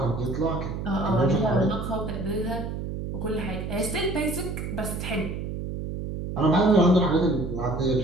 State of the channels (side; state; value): right; noise; hum, 5 dB below the sound